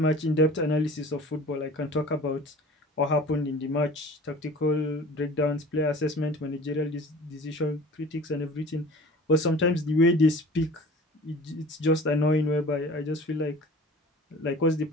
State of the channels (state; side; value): normal; both; correlation 0.43